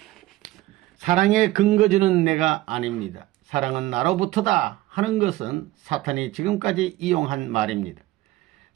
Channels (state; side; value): quieter; left; 16.7 dB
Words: 사랑의 근거지는 내가 아닙니다. 사랑은 나로부터다 하는 것은 사탄이 지금까지 이용한 말입니다.